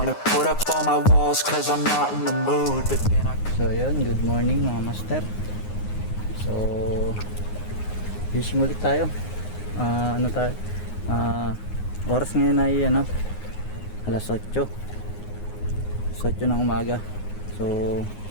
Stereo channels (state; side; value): late; right; 9.6 ms